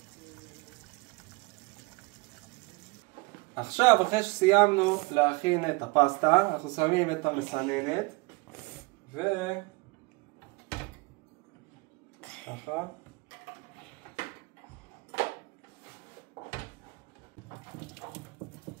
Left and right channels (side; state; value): left; quieter; 26.2 dB